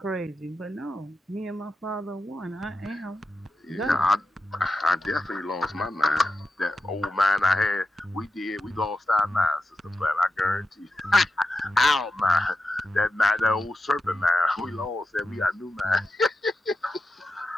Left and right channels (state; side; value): normal; both; correlation 0.90